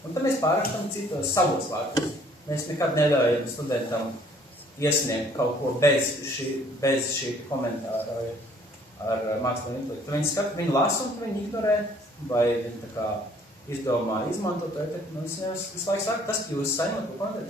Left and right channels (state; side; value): normal; both; correlation 0.59